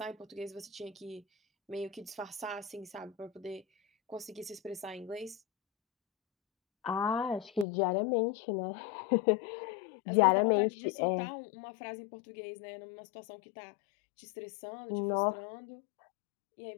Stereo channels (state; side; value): drops out; right; at 7.7 s